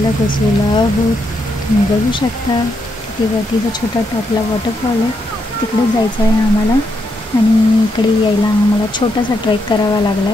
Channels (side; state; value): both; normal; correlation 0.80